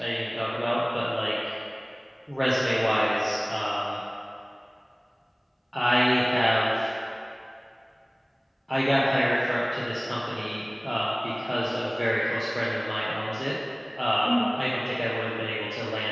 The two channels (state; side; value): identical; both; correlation 1.00